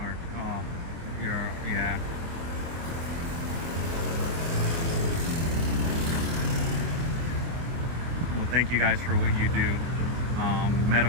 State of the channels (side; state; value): left; late; 24 ms